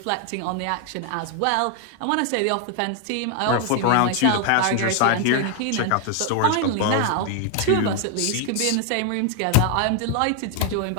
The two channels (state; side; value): different; both; correlation 0.01